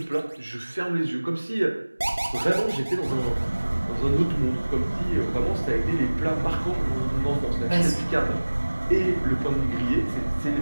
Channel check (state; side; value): inverted; both; correlation -1.00